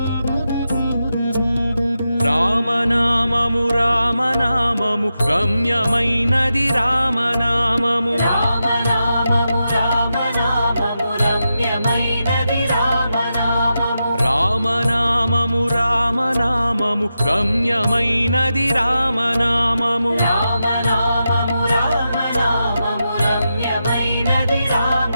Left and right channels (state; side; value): inverted; both; correlation -0.88